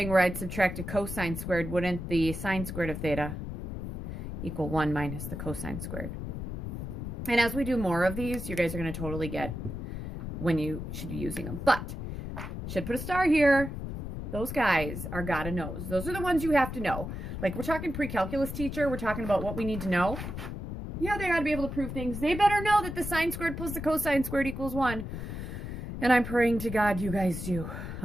where I'd subtract a cosine squared. Wouldn't the sine squared of theta equal 1 minus the cosine squared? And as we do more of these, you guys are going to totally get when you should be using them. But, should put a star here. Those guys are gotta knows. Those are the ones you have to know. Like, we're talking pre-calculus teacher. We're talking about what we need to know. Yeah, they gotta be able to prove things. They better know that the sine squared plus the cosine squared equals 1. And I'm praying to God you guys do.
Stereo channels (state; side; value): noise; left; rumble, 6 dB below the sound